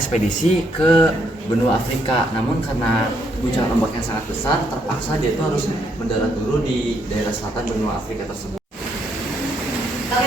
ke benua Afrika. Namun karena guncangan ombak yang sangat besar, terpaksa dia itu harus mendarat dulu di daerah selatan benua Afrika tersebut.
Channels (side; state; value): both; normal; correlation 0.74